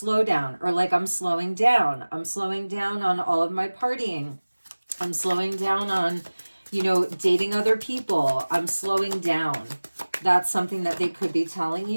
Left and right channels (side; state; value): both; inverted; correlation -1.00